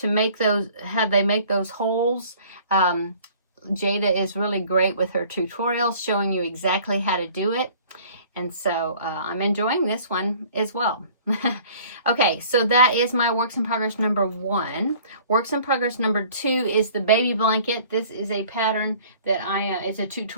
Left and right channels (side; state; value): both; inverted; correlation -0.51